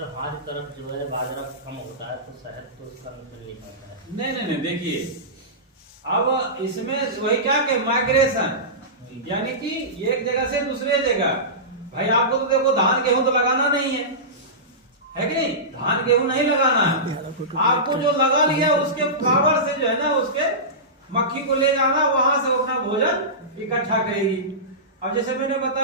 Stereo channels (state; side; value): normal; both; correlation -0.19